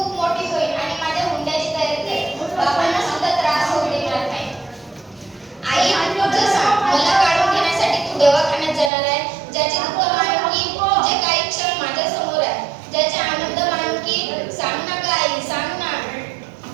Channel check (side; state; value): left; drops out; at 8.9 s